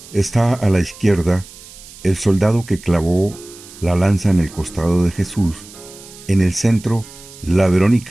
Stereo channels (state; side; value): noise; right; hiss, 19 dB below the sound